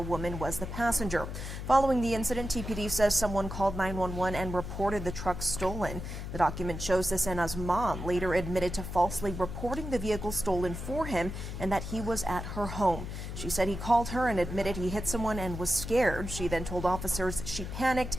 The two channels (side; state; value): left; noise; hum, 7 dB below the sound